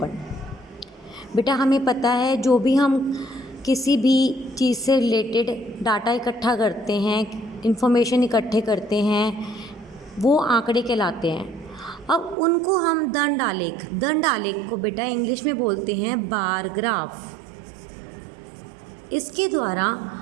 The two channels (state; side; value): drops out; left; at 12.4 s